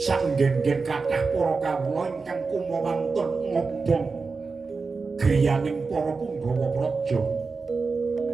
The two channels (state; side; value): quieter; left; 4.4 dB